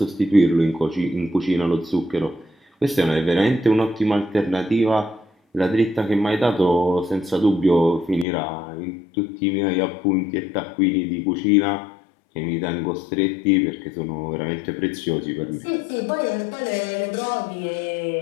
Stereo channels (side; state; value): right; drops out; at 8.2 s